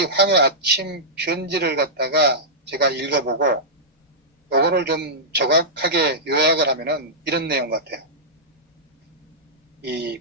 황의 아침 편지를 갖다가 제가 읽어보고 요거를 좀 정확하게 요약을 하면은 이런 내용 같아요. 이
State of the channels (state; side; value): normal; both; correlation -0.13